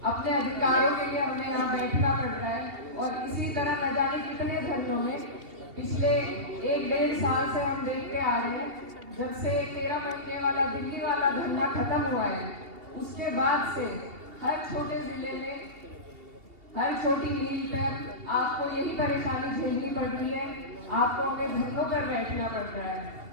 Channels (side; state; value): left; late; 2.7 ms